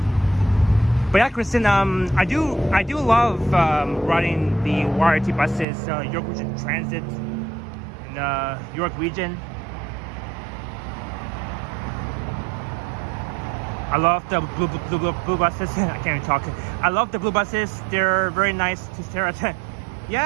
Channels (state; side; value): drops out; left; at 5.7 s